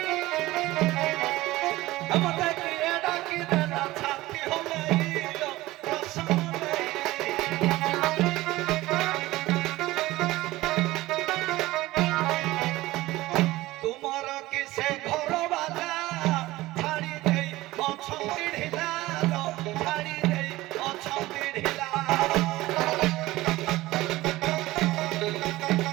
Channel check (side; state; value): left; quieter; 18.1 dB